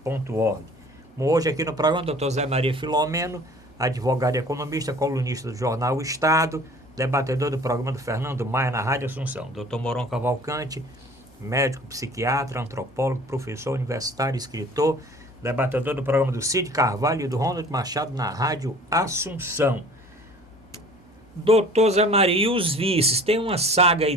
Hoje aqui no programa, Dr. Zé Maria Filomeno, advogado e economista, colunista do jornal O Estado, debatedor do programa do Fernando Maia na Rádio Assunção. Dr. Moron Cavalcante, médico, psiquiatra, antropólogo, professor universitário, escritor, debatedor do programa do Cid Carvalho e do Ronald Machado na Rádio Assunção. Doutor Zé Maria, e os vices? Tem uma saga aí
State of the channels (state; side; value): normal; both; correlation 0.47